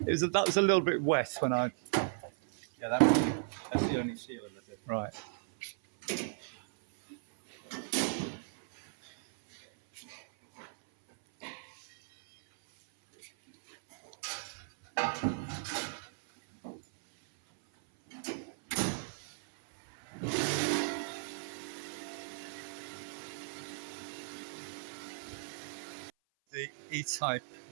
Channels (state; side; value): silent; left; 54 dB below the other